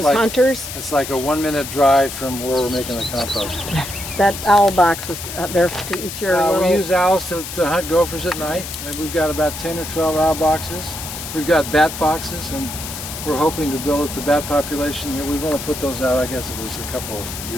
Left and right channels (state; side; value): noise; left; hiss, 9 dB below the sound